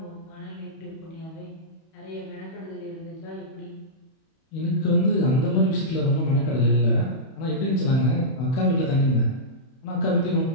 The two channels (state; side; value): late; right; 31 ms